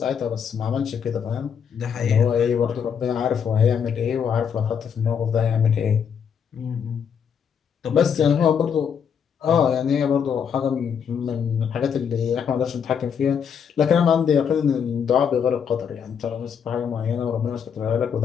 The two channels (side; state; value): right; quieter; 7.4 dB